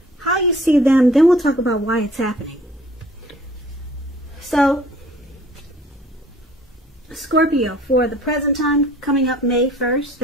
how you see them, then we'll talk about why it's happening. So, Scorpio, for the present time, coming up May 1st,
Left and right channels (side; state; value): both; normal; correlation 0.53